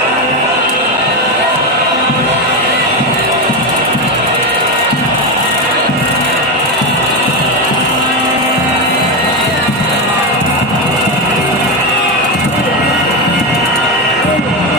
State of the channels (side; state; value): both; normal; correlation 0.12